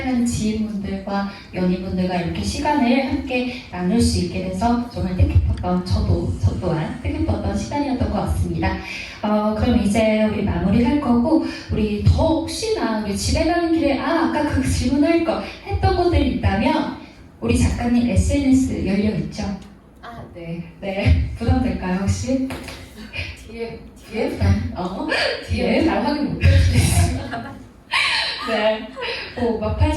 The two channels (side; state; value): both; identical; correlation 1.00